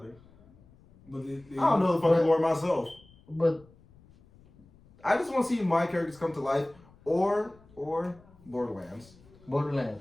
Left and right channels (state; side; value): noise; left; rumble, 27 dB below the sound